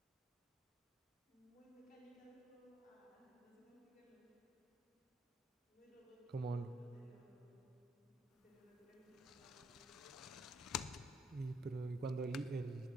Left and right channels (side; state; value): both; normal; correlation 0.73